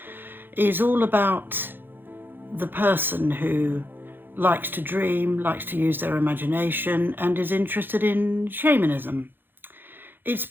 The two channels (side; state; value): left; late; 0.098 ms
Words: is all about the person who likes to dream, likes to use their imagination, and is interested in shamanism. It's